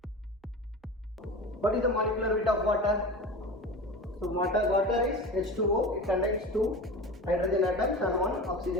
What is the molecular weight of water? So water is H2O. It contains 2 hydrogen atoms and 1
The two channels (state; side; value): normal; both; correlation 0.31